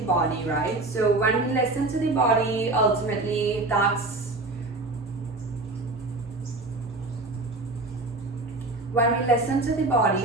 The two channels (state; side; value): quieter; left; 3.1 dB